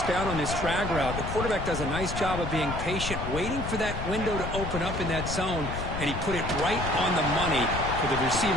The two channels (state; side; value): noise; left; rumble, 5 dB below the sound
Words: down on this drag route. The quarterback does a nice job of being patient, waiting for that window to open up in that zone, and he put it right on the money for the